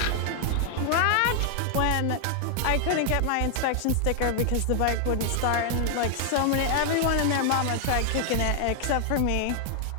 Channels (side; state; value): both; different; correlation 0.00